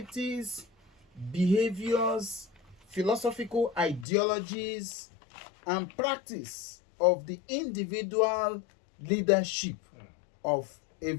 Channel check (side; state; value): right; drops out; at 4.0 s